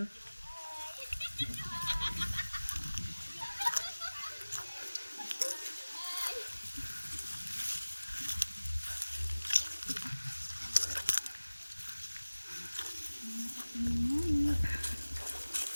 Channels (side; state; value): both; inverted; correlation -1.00